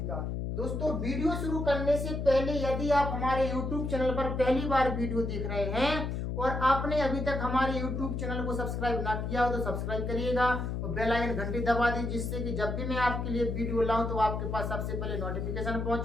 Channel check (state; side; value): noise; left; hum, 3 dB below the sound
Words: का। दोस्तों, वीडियो शुरू करने से पहले यदि आप हमारे YouTube चैनल पर पहली बार वीडियो देख रहे हैं और आपने अभी तक हमारे YouTube चैनल को सब्सक्राइब ना किया हो तो सब्सक्राइब करिएगा और बेल आइकन घंटी दबा दीजिए, जिससे कि जब भी मैं आपके लिए वीडियो लाऊं तो आपके पास सबसे पहले नोटिफिकेशन